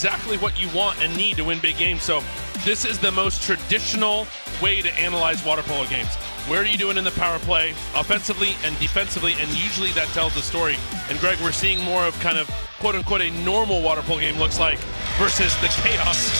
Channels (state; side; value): inverted; both; correlation -1.00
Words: what you want and need to win big games. So this is the most traditional way to analyze water polo games. Where are you doing in the power play, offensively and defensively, and usually that tells the story. And Greg, we're seeing more of kind of quote-unquote a normal water polo game looks like versus the chaos